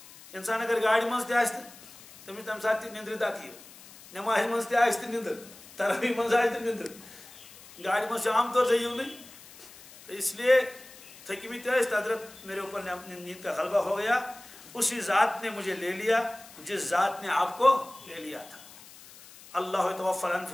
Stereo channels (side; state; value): left; noise; hiss, 20 dB below the sound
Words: اِنسان اگر گاڑِ منٛز تہِ آسہِ تہٕ تٔمِس تَمہِ ساتہٕ تہِ نِندرِ دَکہٕ یِوان، نٮ۪مازِ منٛز تہِ آسہِ تہٕ نِندٕر، تراویح منٛز آسہِ تہٕ نِندٕر، گاڑِ منٛز چھُ عام طور سے یِونٕے. تو اس لیے تھٔکمٕتۍ ٲسۍ، حضرت میرے اوپر نیند کا غلبہ ہو گیا، اسی ذات نے مجھے لے لیا جس ذات نے آپ کو لے لیا تھا. اللہ یتوفی